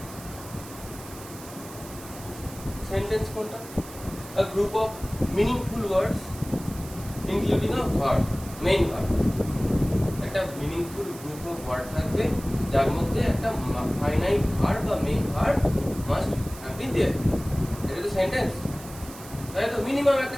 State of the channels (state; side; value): noise; right; hiss, 16 dB below the sound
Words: সেন্টেন্স কোনটা? A group of meaningful words including a verb, main verb. একটা মিনিংফুল গ্রুপ অফ ওয়ার্ড থাকবে যার মধ্যে একটা ফাইনাইট ভার্ব বা main verb must have been there. এটা তো সেন্টেন্স, তাই তো মিনিমাম একটা